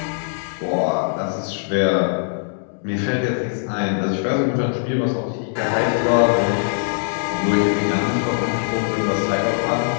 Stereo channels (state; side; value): silent; right; digital silence